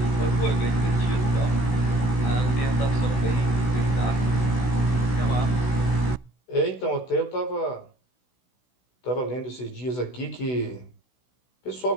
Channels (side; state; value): right; late; 16 ms